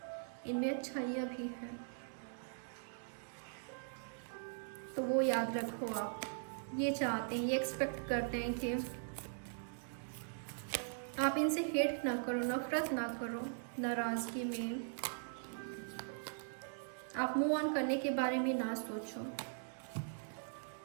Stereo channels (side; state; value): left; silent; digital silence